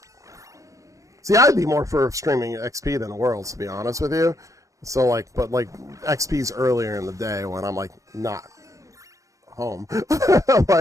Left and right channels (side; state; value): left; late; 0.16 ms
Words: See, I'd be more for streaming XP than Worlds, to be honest with you. So like, but like, XP's earlier in the day when I'm like, not home.